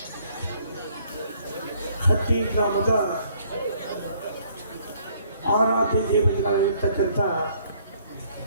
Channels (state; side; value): inverted; both; correlation -0.64